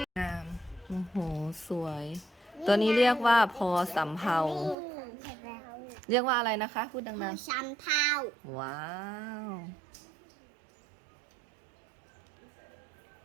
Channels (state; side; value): drops out; left; at 4.8 s